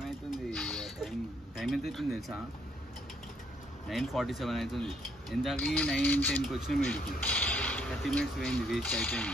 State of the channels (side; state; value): both; normal; correlation 0.70